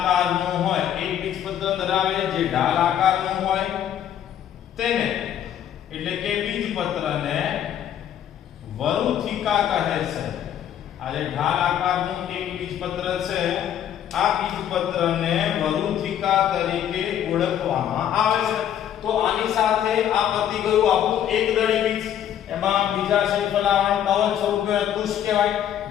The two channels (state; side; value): quieter; right; 10.3 dB